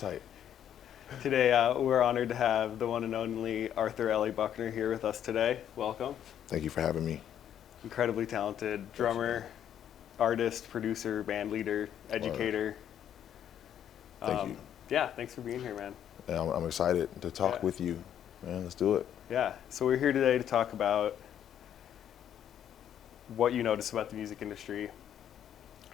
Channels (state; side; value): quieter; right; 9.9 dB